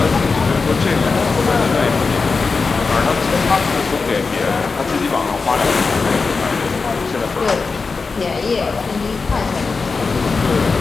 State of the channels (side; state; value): right; quieter; 4.5 dB